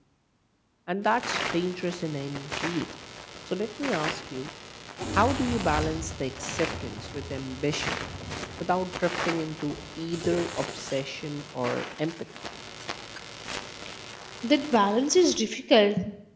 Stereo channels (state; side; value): identical; both; correlation 1.00